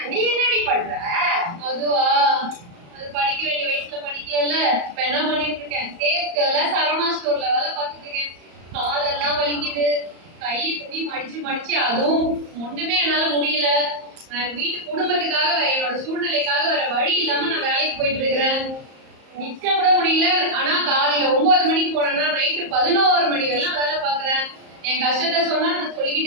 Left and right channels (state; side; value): late; left; 34 ms